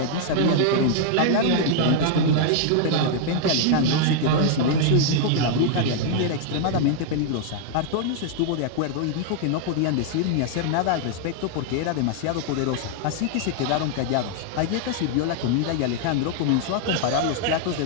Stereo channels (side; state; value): both; different; correlation 0.00